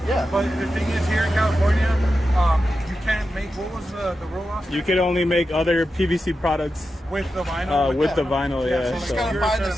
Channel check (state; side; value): normal; both; correlation 0.90